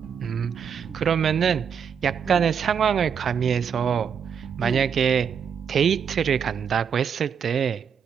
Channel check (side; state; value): left; quieter; 7.3 dB